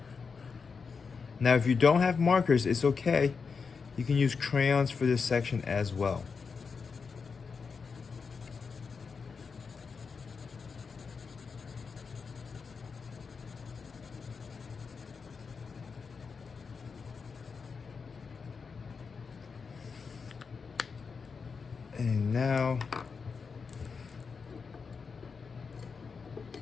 Now, if you don't have markers, it's okay. You can use crayons for this section as well. And now,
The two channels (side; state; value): right; quieter; 5.3 dB